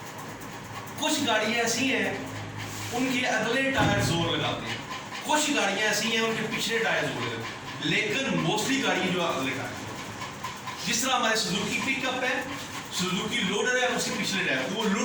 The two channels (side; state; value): both; identical; correlation 1.00